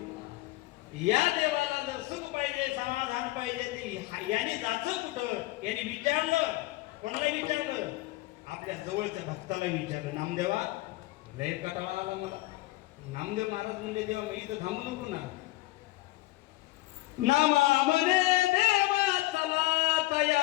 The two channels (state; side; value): quieter; right; 19.2 dB